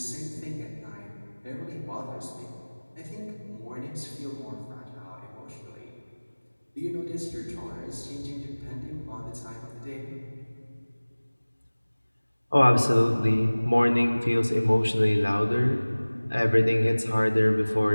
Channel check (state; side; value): inverted; both; correlation -1.00